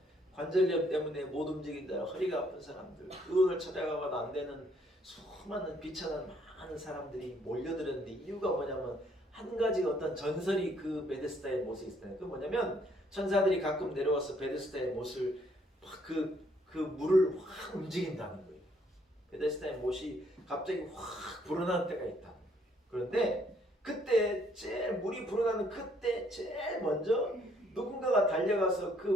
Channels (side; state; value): both; normal; correlation 0.67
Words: 관절염 때문에 못 움직인다, 허리가 아픈 사람들, 그걸 찾아가봐도 안 되는 수많은 비천한 많은 사람들이 몰려들었는데 이유가 뭐냐면 한 가지 어떤 전설이 그 베데스다의 못에 있었다. 그 뭐냐면 천사들이 가끔 내려와서 베데스다의 못을 그 물을 확 움직인다는 거예요. 베데스다의 못이 갑자기 확 불어나는 때가 있다. 그런데 그때 제일 물이 불어나는 그때 제일 먼저 누군가가 달려가서